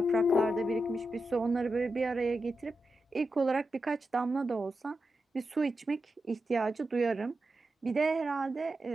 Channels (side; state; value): both; normal; correlation 0.89